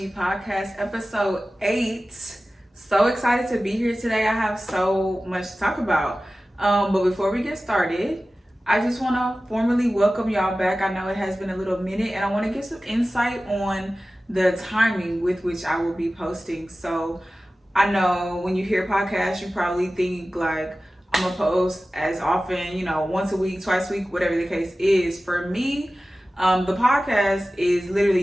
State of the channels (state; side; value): normal; both; correlation 0.96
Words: Podcast, episode 8. So excited to be here today. I have so much to talk about. But before we get started, I just want to formally welcome y'all back. I know it has been a little minute, and I want to get some insight on the timing with which I will be posting. So I know when you hear podcasts, you probably think like I'm gonna post as often, once a week, twice a week, whatever the case is. For me, the podcast is